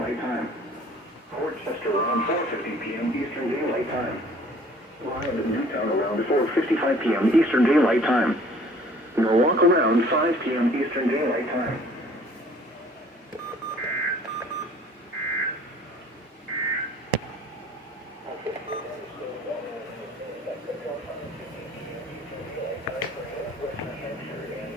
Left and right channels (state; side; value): normal; both; correlation 0.53